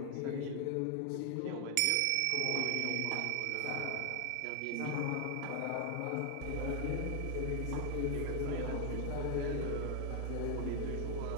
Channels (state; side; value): different; both; correlation 0.00